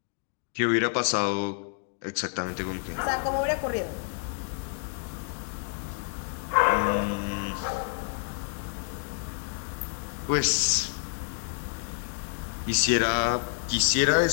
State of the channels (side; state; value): right; silent; digital silence